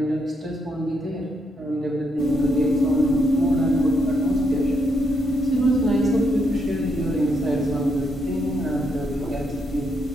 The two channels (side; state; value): both; normal; correlation 0.78